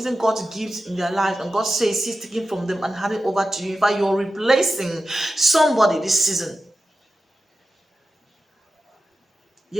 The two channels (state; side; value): normal; both; correlation 0.92